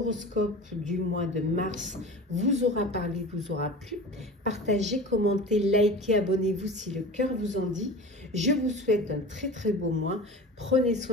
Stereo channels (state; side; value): normal; both; correlation 0.35